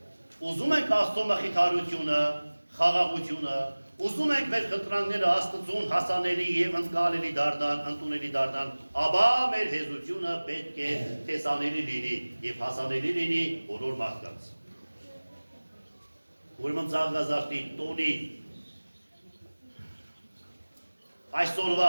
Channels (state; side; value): inverted; both; correlation -1.00